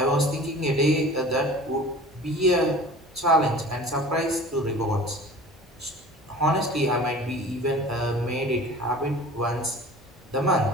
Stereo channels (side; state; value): both; normal; correlation 0.42